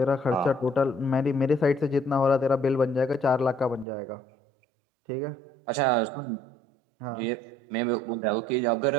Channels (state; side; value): drops out; left; at 3.9 s